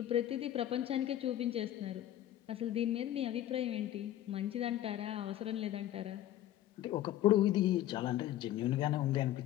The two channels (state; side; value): quieter; right; 12.9 dB